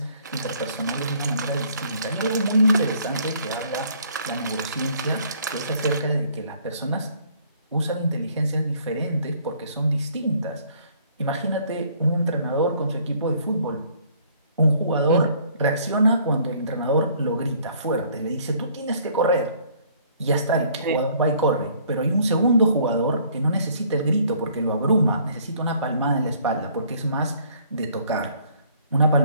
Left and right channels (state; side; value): inverted; both; correlation -0.60